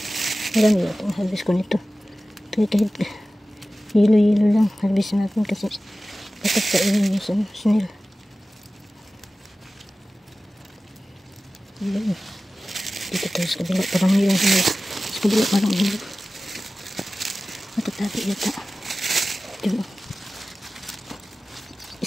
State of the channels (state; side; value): normal; both; correlation 0.96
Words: Marami natin harvest ko nito. Kahit hilo-hilo lang harvest natin kasi patag kainin yung sa snail. Dito tayo sa kabila, parang hilang hilo. Sa kabila parang hilo. Matatabi yata. Diba?